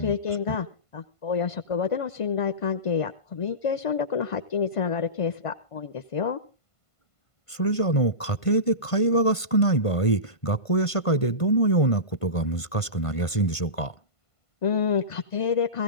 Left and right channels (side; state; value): right; late; 1.5 ms